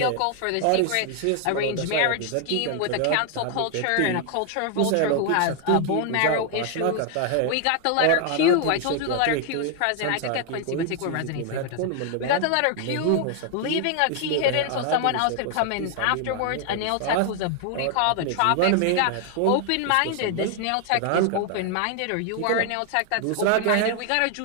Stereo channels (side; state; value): both; different; correlation 0.00